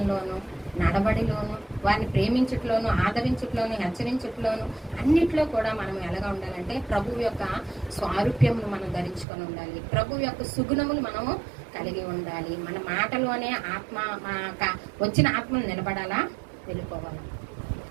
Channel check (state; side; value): drops out; left; at 9.2 s